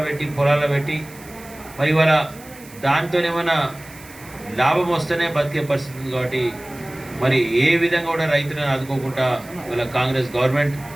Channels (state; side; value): noise; right; hiss, 21 dB below the sound